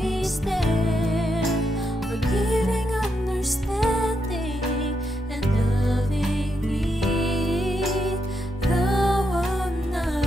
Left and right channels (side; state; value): both; normal; correlation 0.82